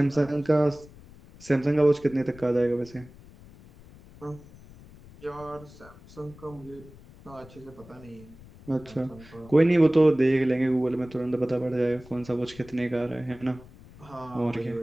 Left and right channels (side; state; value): left; noise; rumble, 21 dB below the sound